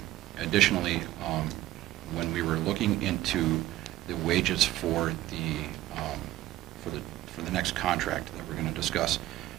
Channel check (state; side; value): quieter; left; 15.4 dB